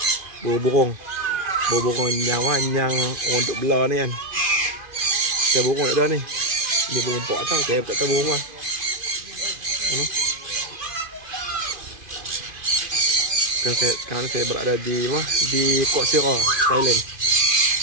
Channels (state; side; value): late; left; 2.5 ms